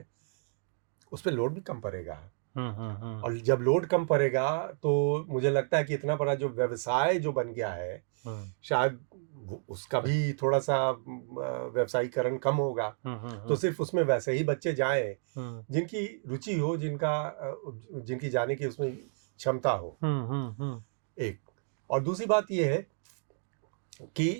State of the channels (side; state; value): left; silent; digital silence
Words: उस पर लोड भी कम पड़ेगा। और जब लोड कम पड़ेगा तो मुझे लगता है कि इतना बड़ा जो व्यवसाय जो बन गया है शायद उसका भी थोड़ा सा व्यवसायीकरण कम होगा। तो सिर्फ उसमें वैसे ही बच्चे जाएं जिनकी रुचि हो, जिनकी जाने की उसमें क्षमता हो। एक और दूसरी बात यह है